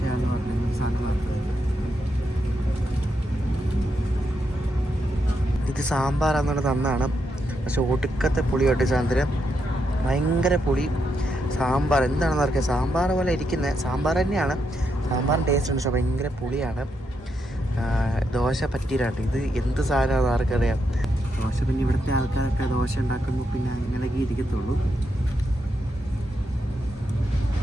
പറഞ്ഞ ഈ സാധനം മാത്രമേ. ഇത് സാമ്പാറാണെന്ന് തന്നാണ്, പക്ഷെ ഒടുക്കത്തെ പുളി കേട്ടോ സാധനം. ഭയങ്കര പുളി. സാമ്പാർ എന്താണെന്ന് അറിയാം, സാമ്പാർ പോലെ ഇരിക്കുന്നത് സാമ്പാർ തന്നെയാണ്. സാമ്പാറിന് ടേസ്റ്റ് ഉണ്ട്, പക്ഷെ ഭയങ്കര പുളിയാണ്. ദോശ പറ്റീരാട്ടോ. ഇത് എന്ത് സാധനമാണെന്ന് ആർക്കറിയാം. ദോശ പിന്നെ ഇവിടുത്തെ ആൾക്കാരൊക്കെ ദോശ ഉണ്ടാക്കുമ്പോൾ പിന്നെ അങ്ങനെയൊക്കെ ഇരിക്കത്തുള്ളൂ.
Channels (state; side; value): normal; both; correlation 0.82